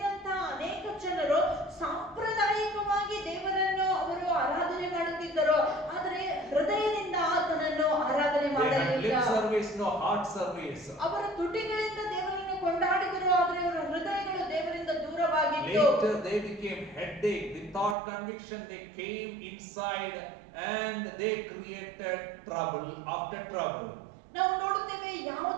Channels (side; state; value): left; drops out; at 17.9 s